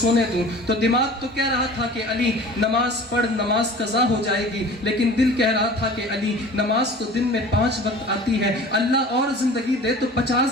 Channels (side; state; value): both; normal; correlation 0.42